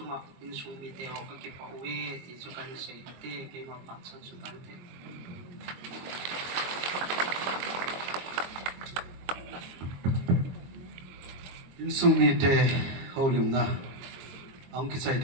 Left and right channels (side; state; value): left; late; 22 ms